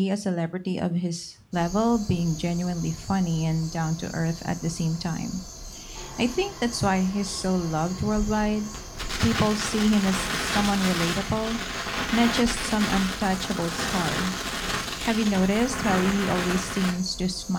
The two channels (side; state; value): both; identical; correlation 1.00